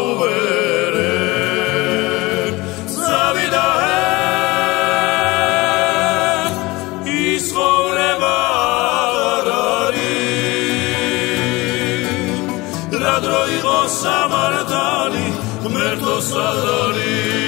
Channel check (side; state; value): right; quieter; 21.9 dB